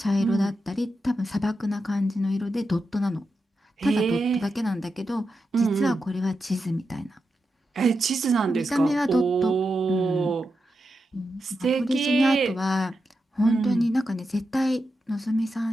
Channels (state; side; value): normal; both; correlation 0.88